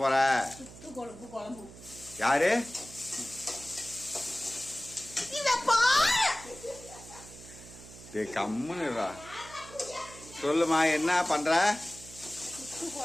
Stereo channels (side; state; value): right; noise; hum, 17 dB below the sound